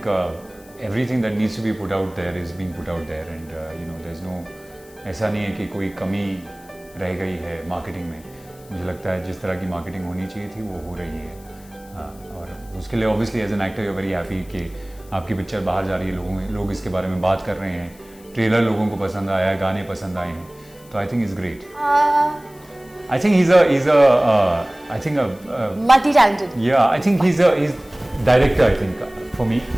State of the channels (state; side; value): noise; left; hiss, 25 dB below the sound